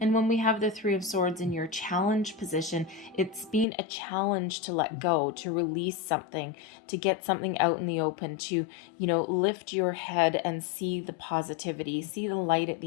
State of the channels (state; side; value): drops out; right; at 3.7 s